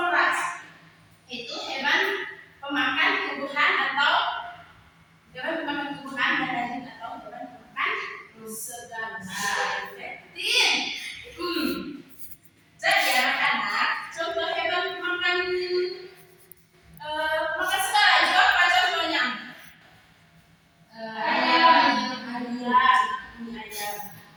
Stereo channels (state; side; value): identical; both; correlation 1.00